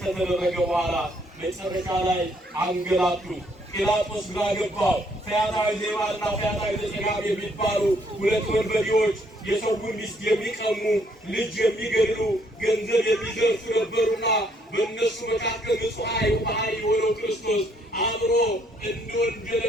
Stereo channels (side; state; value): both; normal; correlation 0.68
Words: ከተደረገ በኋላ መጨረሻ ላይ አንገላቱት። ጲላጦስ ግራ ገባው። ፈያታዊ ዜማና ፈያታዊ ዘጸጋም የሚባሉ ሁለት ወንበዴዎች የሰውን ሚስት የሚቀሙ፣ ልጅ የሚገድሉ፣ ገንዘብ የሚዘርፉ ነበሩና በእነሱ መካከል ንጹሕ የሆነው ክርስቶስ አብሮ እንደ